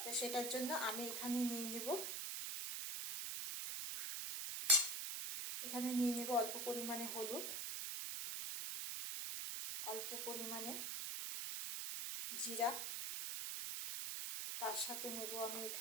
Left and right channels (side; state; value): right; noise; hiss, 2 dB below the sound